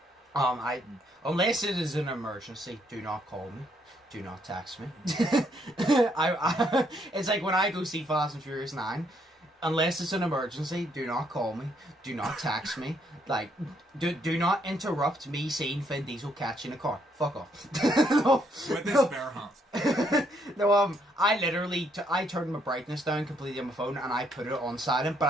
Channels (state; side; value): normal; both; correlation 0.71